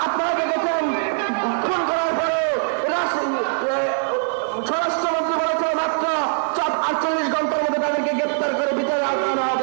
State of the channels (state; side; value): silent; left; 64 dB below the other